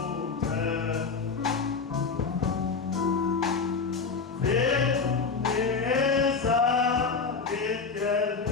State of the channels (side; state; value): right; quieter; 4.9 dB